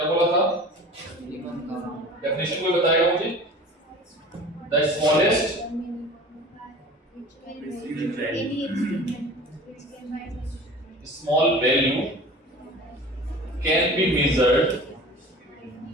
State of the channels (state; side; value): normal; both; correlation 0.40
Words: बोला था? Minimum count. डेफिनेशन कोई बताएगा मुझे? The smallest small value can be measured